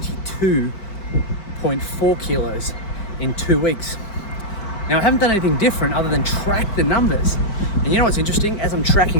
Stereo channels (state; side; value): late; right; 5.0 ms